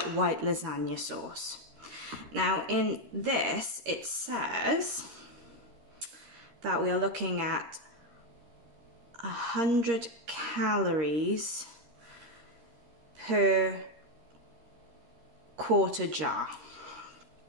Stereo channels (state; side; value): late; left; 13 ms